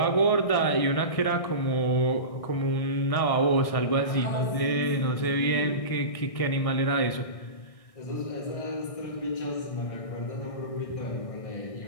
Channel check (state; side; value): late; right; 1.6 ms